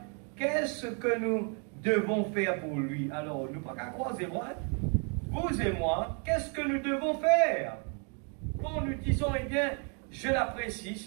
qu'est-ce que nous devons faire pour lui? Alors, nous pas qu'à croiser moi, vous et moi, qu'est-ce que nous devons faire? Quand nous disons, eh bien, je l'apprécie,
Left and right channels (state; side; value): quieter; left; 39.3 dB